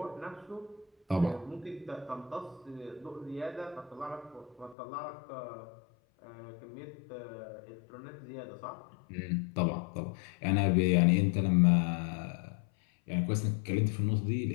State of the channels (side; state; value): right; drops out; at 4.8 s